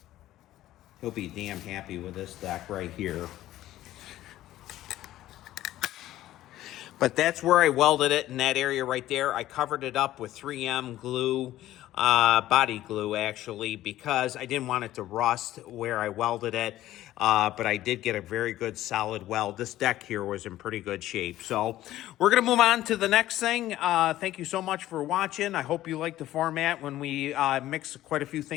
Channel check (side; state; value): right; quieter; 14.3 dB